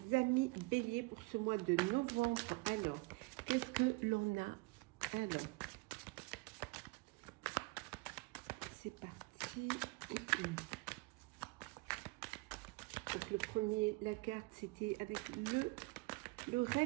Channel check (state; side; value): quieter; left; 26.1 dB